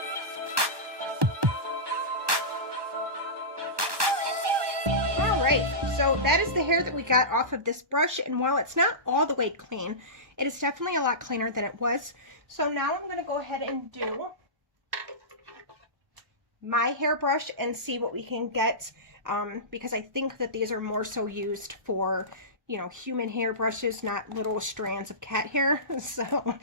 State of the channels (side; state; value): left; late; 1.2 ms